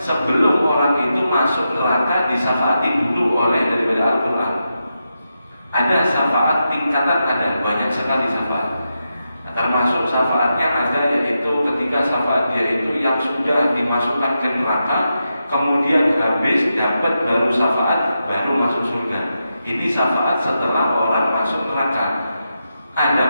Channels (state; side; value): inverted; both; correlation -0.87